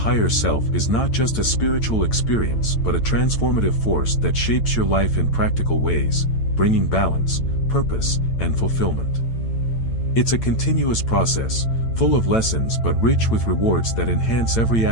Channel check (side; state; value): right; late; 8.9 ms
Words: self is not just a spiritual experience but a transformative force that shapes your life in practical ways, bringing balance, purpose, and fulfillment. It's a continuous process, full of lessons but rich with rewards that enhance every